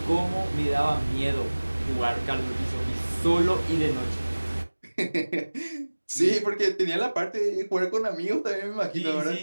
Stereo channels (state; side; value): inverted; both; correlation -1.00